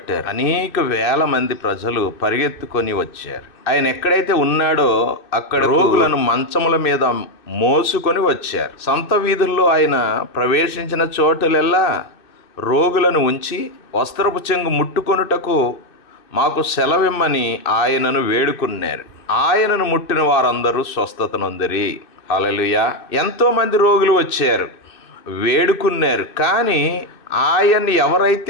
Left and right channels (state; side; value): late; right; 2.6 ms